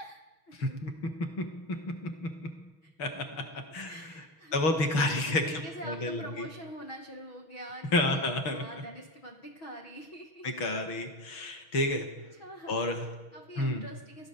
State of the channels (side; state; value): right; late; 6.3 ms